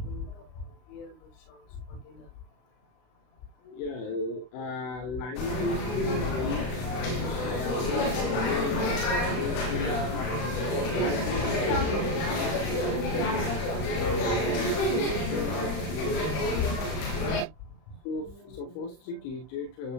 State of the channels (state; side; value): late; right; 33 ms